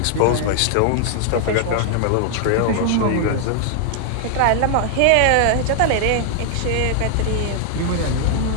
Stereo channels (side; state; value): both; different; correlation 0.00